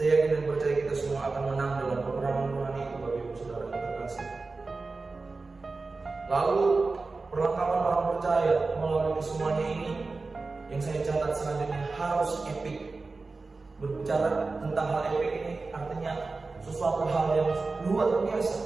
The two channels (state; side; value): quieter; left; 3.8 dB